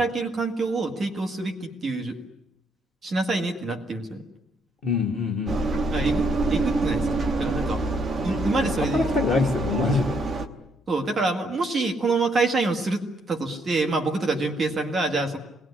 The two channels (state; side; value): normal; both; correlation 0.72